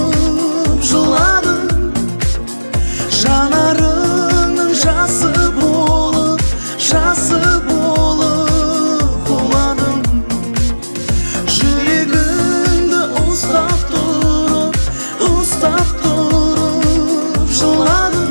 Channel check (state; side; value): inverted; both; correlation -1.00